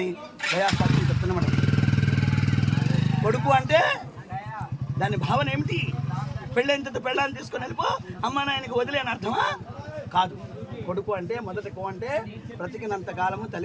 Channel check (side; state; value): both; identical; correlation 1.00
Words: గయా శాస్త్రం చెప్తున్నమాట. కొడుకు అంటే దాని భావన ఏమిటి? పెళ్ళైన పెళ్ళాన్ని తీసుకొని వెళ్ళిపో అమ్మా నాయనకి వదిలేని అర్థమా? కాదు. కొడుకు అంటే మొదటి కో అంటే బ్రతికినంత కాలము